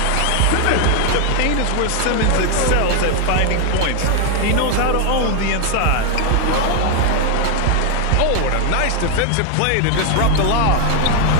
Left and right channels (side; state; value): both; different; correlation 0.00